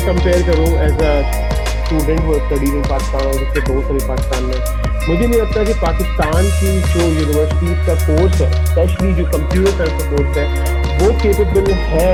कंपेयर करूँ एज अ स्टूडेंट वो स्टडीज इन पाकिस्तान और जिसके दोस्त अभी पाकिस्तान में, मुझे नहीं लगता कि पाकिस्तान की जो यूनिवर्सिटीज़ का कोर्स है, स्पेशली जो कंप्यूटर साइंस का कोर्स है, वो केपेबल है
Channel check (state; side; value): identical; both; correlation 1.00